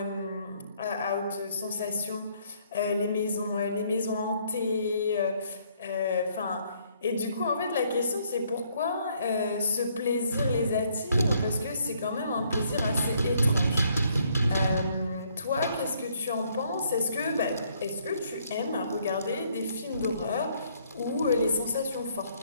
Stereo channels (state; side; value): inverted; both; correlation -0.67